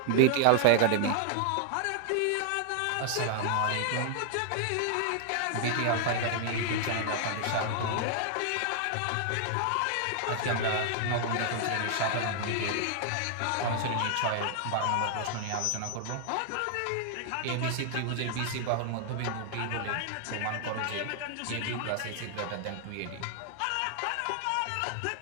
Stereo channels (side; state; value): both; different; correlation 0.00